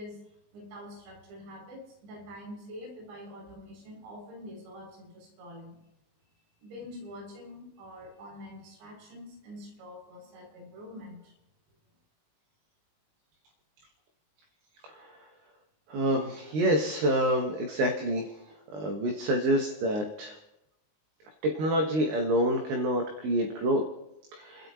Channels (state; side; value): late; left; 19 ms